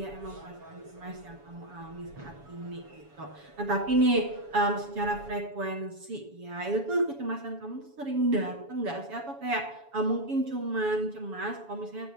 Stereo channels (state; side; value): late; left; 7.1 ms